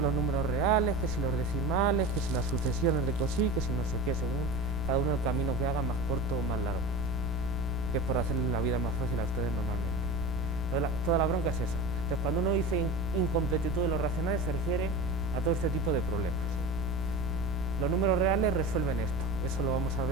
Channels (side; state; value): right; noise; rumble, 9 dB below the sound